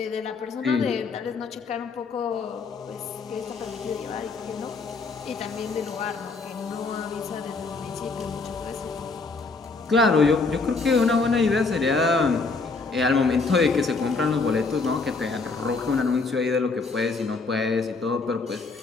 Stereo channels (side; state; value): right; quieter; 4.1 dB